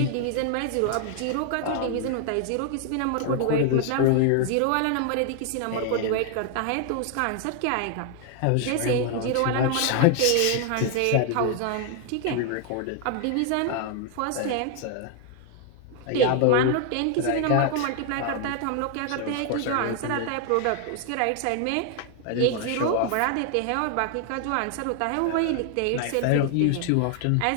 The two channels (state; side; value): different; both; correlation 0.00